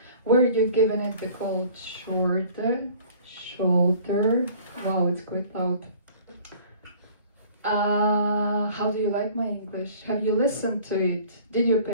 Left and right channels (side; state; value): both; inverted; correlation -0.50